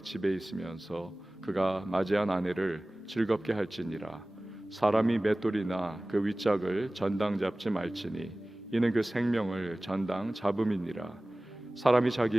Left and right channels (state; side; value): normal; both; correlation 0.98